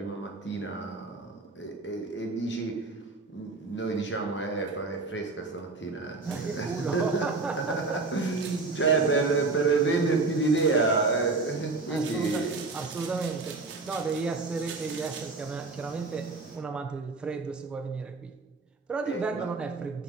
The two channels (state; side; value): quieter; left; 3.7 dB